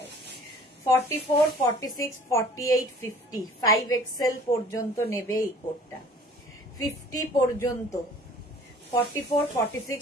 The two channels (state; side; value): normal; both; correlation 0.50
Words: 44, 46, 48, 50, 5XL পর্যন্ত নেবে এই কোটটা, 50 পর্যন্ত। 44, 46,